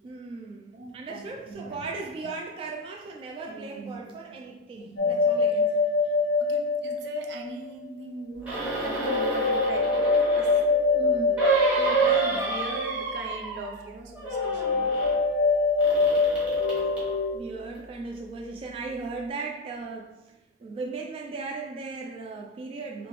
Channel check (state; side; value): normal; both; correlation 0.08